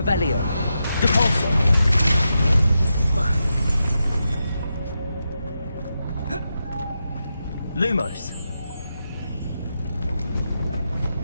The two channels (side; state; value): both; inverted; correlation -0.87